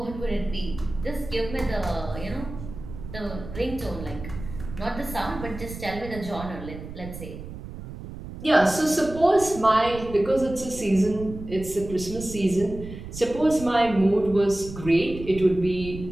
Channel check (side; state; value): right; noise; rumble, 11 dB below the sound